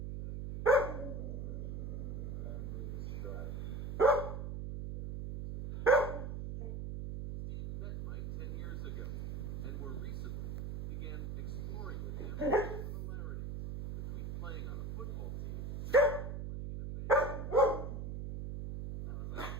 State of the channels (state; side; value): noise; right; hum, 5 dB below the sound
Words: I could. Memories strike through their music. Steve met Mike 10 years ago, and more recently began exploring with him similarities between playing on a football team and playing in a band. I was like,